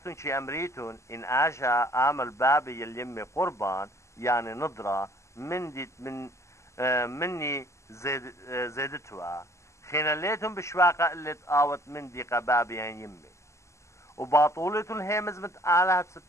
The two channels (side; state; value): right; late; 0.14 ms